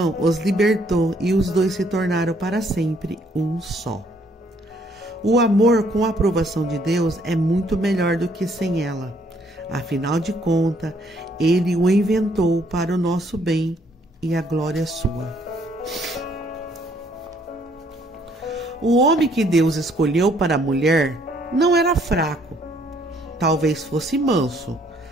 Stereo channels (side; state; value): both; normal; correlation 0.66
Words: os libertou e os dois se tornaram para sempre um só. O amor com a aprovação de Deus é muito melhor do que sem ela. Afinal de contas, ele o inventou para o nosso bem e a glória sua. O homem que Deus escolheu para a mulher não era fraco. Talvez fosse manso,